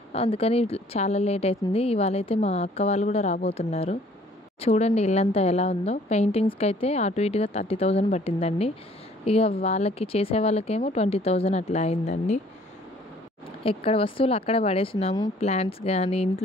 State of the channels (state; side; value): normal; both; correlation 0.57